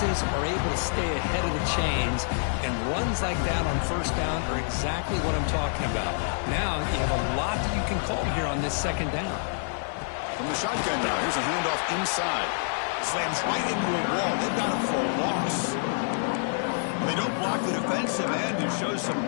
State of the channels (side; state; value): right; silent; 60 dB below the other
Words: are able to stay ahead of the chains, and runs like that on first down are exactly what I'm talking about. Now you have a lot that you can call here on this second down. From the shotgun now, here's a handoff inside. Slams right into a wall. They've got him for a loss. They don't block the defensive end, who shows some